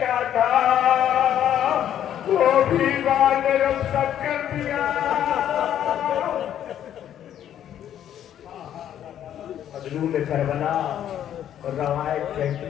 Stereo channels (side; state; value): right; quieter; 10.5 dB